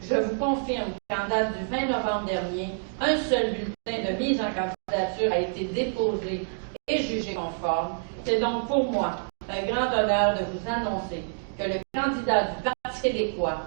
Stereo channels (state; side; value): silent; left; digital silence